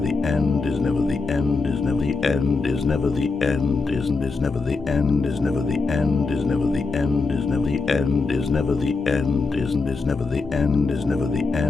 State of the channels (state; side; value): quieter; right; 4.0 dB